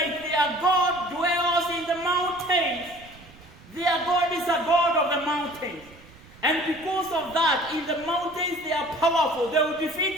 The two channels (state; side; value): noise; right; rumble, 22 dB below the sound